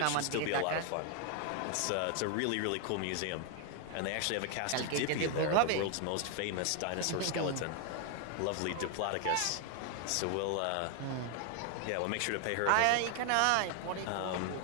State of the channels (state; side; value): different; both; correlation 0.00